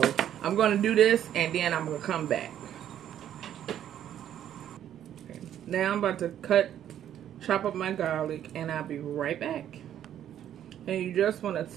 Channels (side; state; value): left; quieter; 10.6 dB